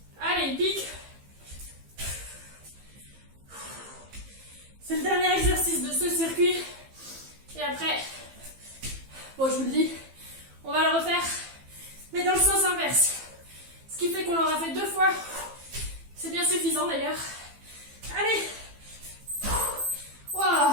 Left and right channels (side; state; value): left; late; 15 ms